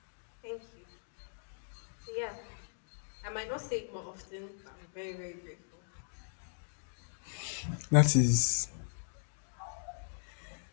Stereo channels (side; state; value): right; silent; digital silence